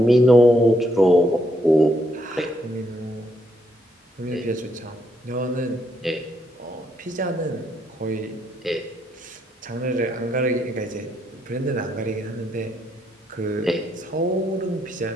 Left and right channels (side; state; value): both; normal; correlation 0.75